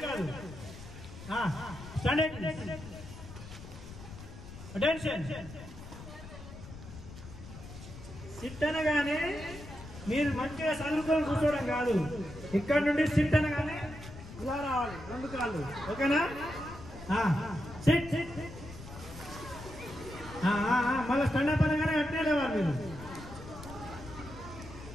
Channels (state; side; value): noise; left; rumble, 14 dB below the sound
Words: కాదు స్టాండర్డ్ అటెన్షన్ సిట్ అనగానే మీరు మంచిగా చదువుకొని కూర్చోవడం కాదు ఇక్కడ నుండి సిట్ అనగానే ఇలా రావాలి రెండు కాళ్ళు ఓకేనా సిట్ మళ్ళీ స్టాండప్ అనగానే అట్నే లేవాలి మీరు